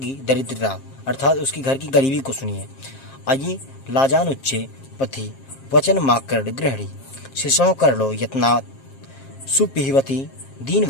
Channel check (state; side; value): late; right; 7.4 ms